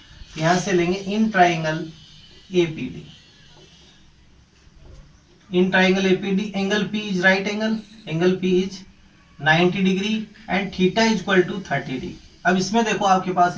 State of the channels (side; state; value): both; identical; correlation 1.00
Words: यहां से लेंगे in triangle A P D, in triangle A P D angle P is right angle, angle P is 90 degree and theta is equal to 30 degree. अब इसमें देखो आपके